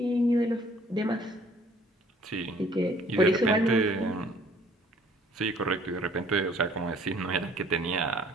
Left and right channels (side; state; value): both; normal; correlation 0.57